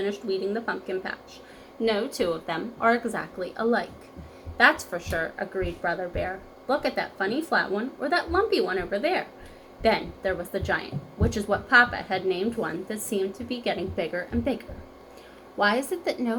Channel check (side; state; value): both; identical; correlation 1.00